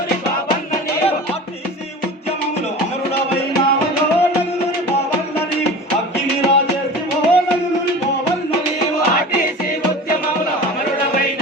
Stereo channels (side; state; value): both; normal; correlation 0.35